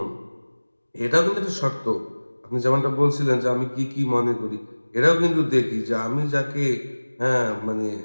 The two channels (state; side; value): inverted; both; correlation -1.00